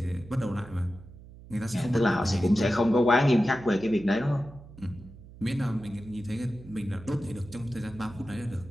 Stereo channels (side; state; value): right; noise; hum, 18 dB below the sound